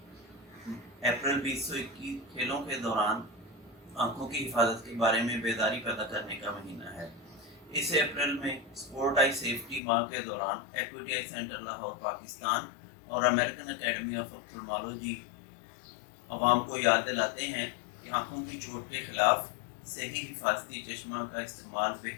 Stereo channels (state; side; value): drops out; right; at 9.8 s